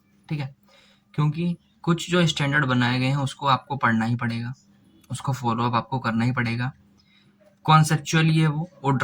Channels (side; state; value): both; identical; correlation 1.00